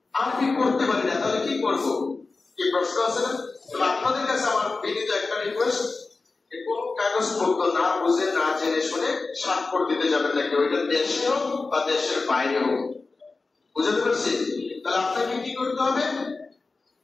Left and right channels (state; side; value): quieter; right; 3.8 dB